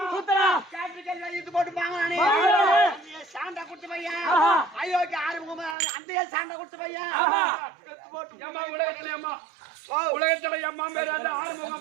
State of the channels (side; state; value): left; drops out; at 5.8 s